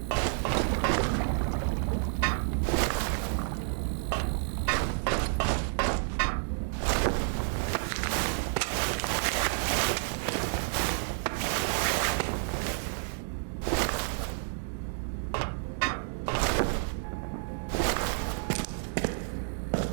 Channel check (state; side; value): silent; left; digital silence